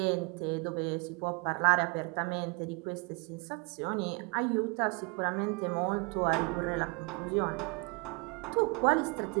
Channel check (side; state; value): left; quieter; 30.4 dB